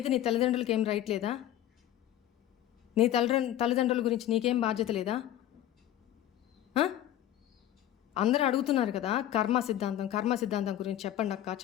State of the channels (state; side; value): quieter; right; 12.5 dB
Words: నీ తల్లిదండ్రులకి ఏం రైట్ లేదా? నీ తల్లిదండ్రుల గురించి నీకేం బాధ్యత లేదా? అందరూ అడుగుతున్నారు కదా, కర్మ సిద్ధాంతం గురించి చెప్పండి